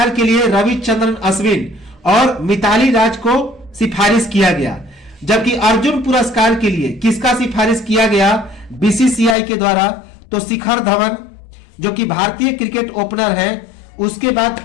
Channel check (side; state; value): right; drops out; at 9.3 s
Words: के लिए रविचंद्रन अश्विन और मिताली राज को सिफारिश किया गया। जबकि अर्जुन पुरस्कार के लिए किसका सिफारिश किया गया बीसीसीआई के द्वारा? तो शिखर धवन जो कि भारतीय क्रिकेट ओपनर हैं, उसके बाद